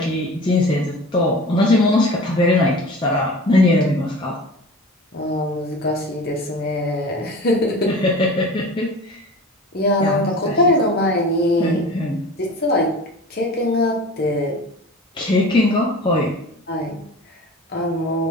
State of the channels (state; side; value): normal; both; correlation 0.38